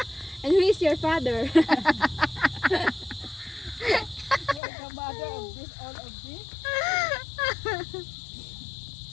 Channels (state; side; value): drops out; right; at 4.6 s